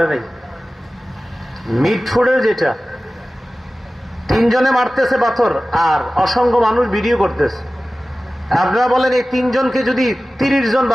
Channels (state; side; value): normal; both; correlation 0.96